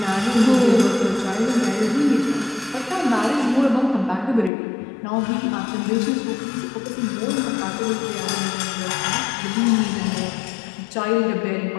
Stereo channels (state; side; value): drops out; right; at 4.5 s